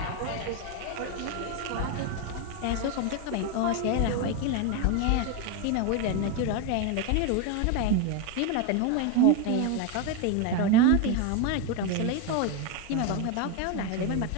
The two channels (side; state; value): both; different; correlation 0.02